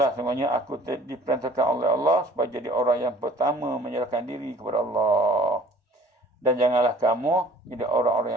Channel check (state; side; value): normal; both; correlation 0.51